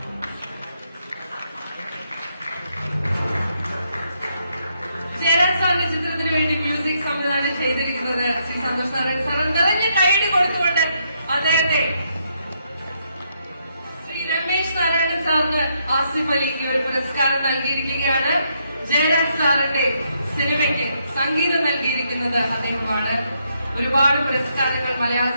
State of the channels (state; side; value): inverted; both; correlation -0.76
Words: ജയരാജ് സാറിന്റെ ചിത്രത്തിന് വേണ്ടി മ്യൂസിക് സംവിധാനം ചെയ്തിരിക്കുന്നത് ശ്രീ സന്തോഷ് നാരായണൻ സാർ. നിറഞ്ഞ കൈയ്യടി കൊടുത്തുകൊണ്ട് അദ്ദേഹത്തെ ശ്രീ രമേശ് നാരായണൻ സാറിന് ആസിഫ് അലിക്ക് ഒരു പുരസ്കാരം നൽകിയിരിക്കുകയാണ്. ജയരാജ് സാറിന്റെ സിനിമയ്ക്ക് സംഗീതം നൽകിയിരിക്കുന്നത് അദ്ദേഹമാണ്. ഒരുപാട് പുരസ്കാരങ്ങൾ മലയാള